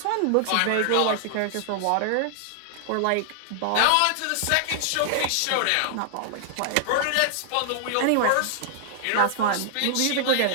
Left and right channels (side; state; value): both; different; correlation -0.01